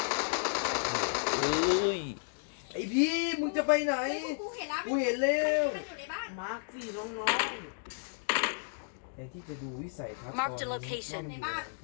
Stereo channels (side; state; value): right; silent; digital silence